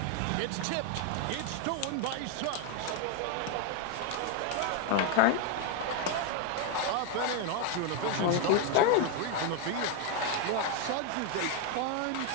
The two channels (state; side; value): different; both; correlation 0.01